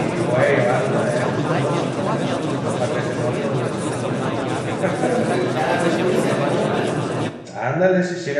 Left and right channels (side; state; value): both; identical; correlation 1.00